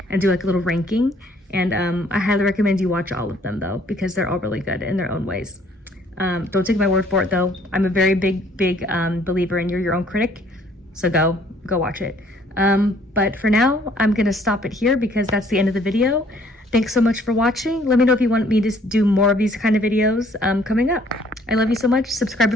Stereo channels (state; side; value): normal; both; correlation 0.61